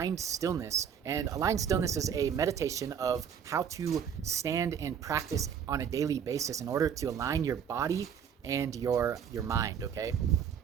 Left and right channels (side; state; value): left; quieter; 7.9 dB